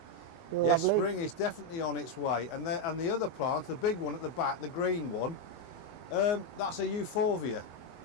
Lovely. Yes, spring is definitely on its way. And the other plant, the big one at the back, the green one, that's a euphorbia.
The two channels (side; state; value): right; late; 24 ms